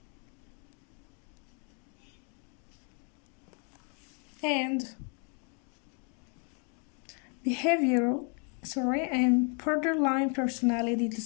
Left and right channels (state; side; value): quieter; right; 38.5 dB